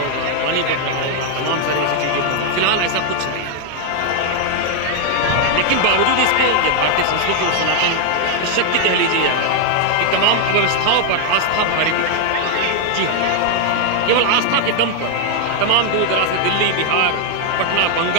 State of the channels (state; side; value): different; both; correlation 0.00